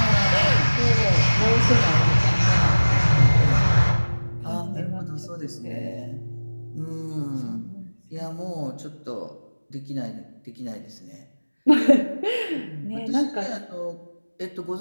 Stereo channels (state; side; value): inverted; both; correlation -1.00